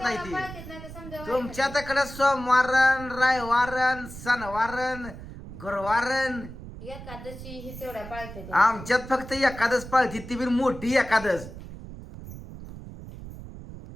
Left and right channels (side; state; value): right; noise; rumble, 13 dB below the sound